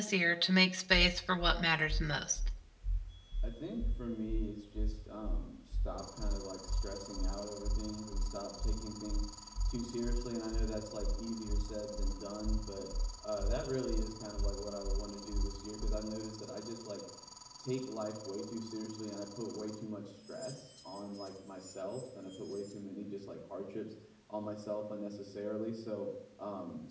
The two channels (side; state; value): both; identical; correlation 1.00